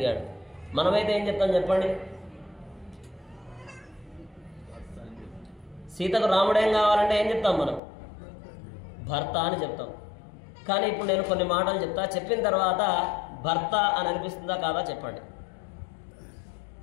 మనమైతే ఏం చెప్తాం చెప్పండి? సీతకు రాముడేం కావాలంటే ఏం చెప్తాం మనం? భర్త అని చెప్తాం. కానీ ఇప్పుడు నేను కొన్ని మాటలు చెప్తా, చెప్పిన తర్వాత భర్త అని అనిపిస్తుందా కాదా చెప్పండి.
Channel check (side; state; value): right; drops out; at 7.8 s